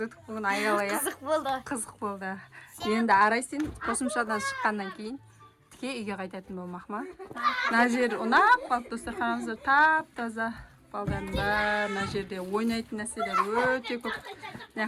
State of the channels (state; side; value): identical; both; correlation 1.00